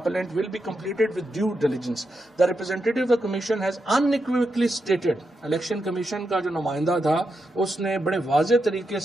will be completed with due diligence. The representative of the Commission has unequivocally stated, Election Commission का जो नुमाइंदा था, उसने बड़े वाज़े तरीके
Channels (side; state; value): both; normal; correlation 0.85